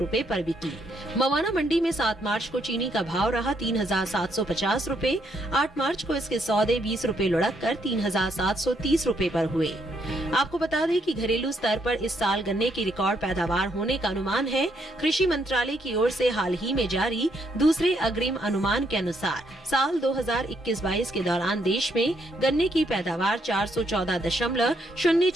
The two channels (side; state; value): both; normal; correlation 0.74